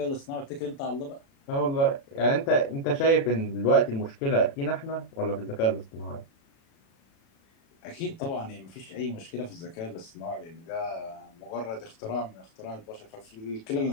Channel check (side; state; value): right; late; 36 ms